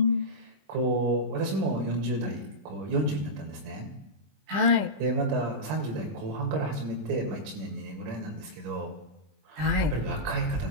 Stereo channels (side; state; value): left; late; 20 ms